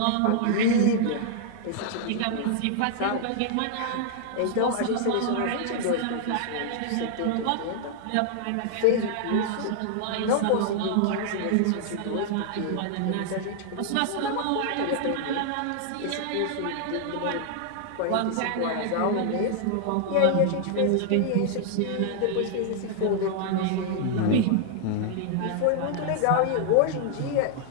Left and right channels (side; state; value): both; different; correlation 0.00